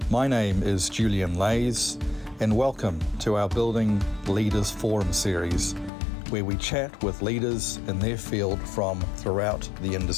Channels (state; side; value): drops out; right; at 5.9 s